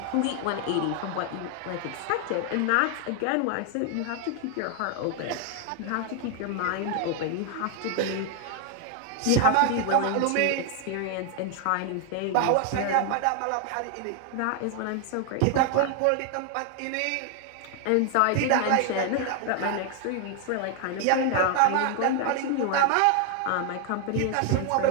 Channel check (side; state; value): both; different; correlation 0.00